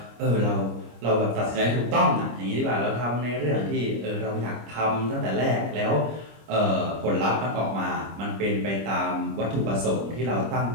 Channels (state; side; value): late; left; 25 ms